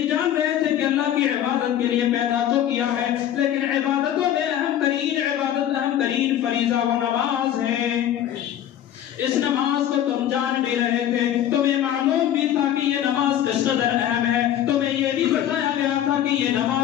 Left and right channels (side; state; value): right; quieter; 11.0 dB